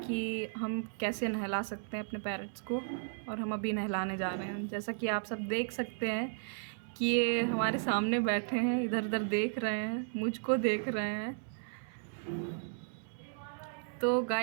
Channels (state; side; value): silent; left; 55 dB below the other